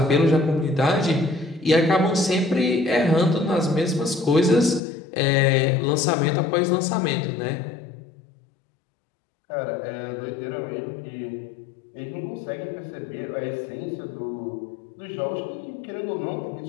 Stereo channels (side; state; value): right; drops out; at 4.8 s